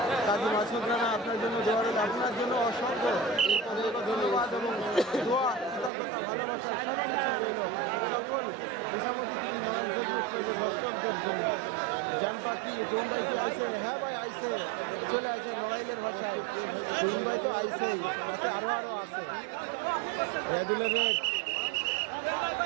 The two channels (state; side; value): drops out; left; at 5.9 s